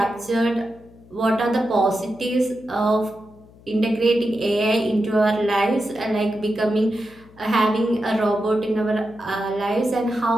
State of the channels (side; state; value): left; noise; hum, 25 dB below the sound